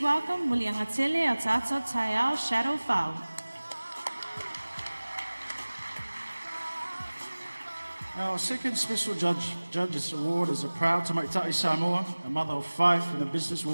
welcome Muliangatele Atata Tayao Shadow Fau. Our second special judge's award is a proud Tamaitai Samoa, a mother of 5 and a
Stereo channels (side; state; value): both; inverted; correlation -1.00